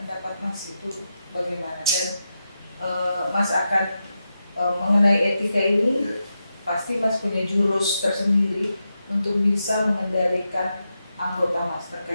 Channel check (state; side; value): inverted; both; correlation -0.88